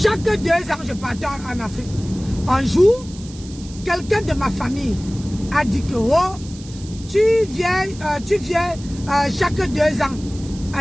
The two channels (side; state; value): right; noise; hiss, 19 dB below the sound